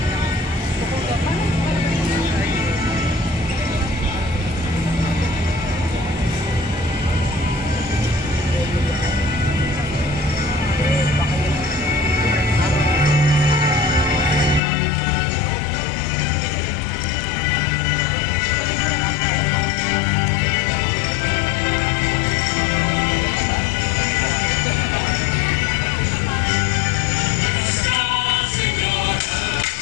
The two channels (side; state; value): right; drops out; at 14.6 s